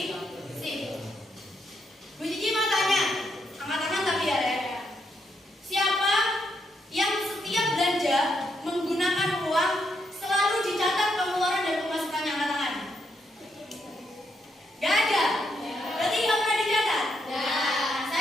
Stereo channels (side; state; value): both; normal; correlation 0.79